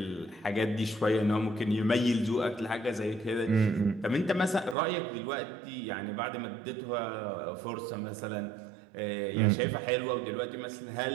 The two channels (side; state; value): left; drops out; at 4.8 s